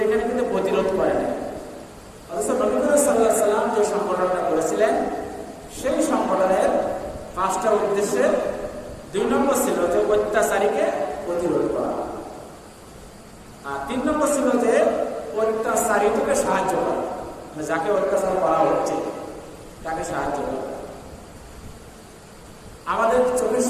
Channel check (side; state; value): both; identical; correlation 1.00